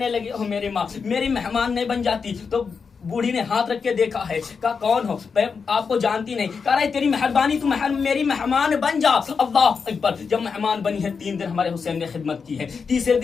लगी ओ मेरी माँ, मेरी मेहमान नहीं बन जाती? तो बूढ़ी ने हाथ रख के देखा है, कहा कौन हो? मैं आपको जानती नहीं। कह रहा है तेरी मेहरबानी, तू मेरी मेहमान बन जा। अल्लाह अकबर। जब मेहमान बनी है, 3 दिन हमारे हुसैन ने खिदमत की है। तीसरे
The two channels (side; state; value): right; quieter; 5.5 dB